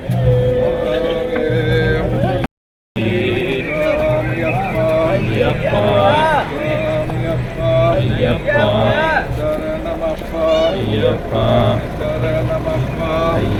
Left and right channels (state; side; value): identical; both; correlation 1.00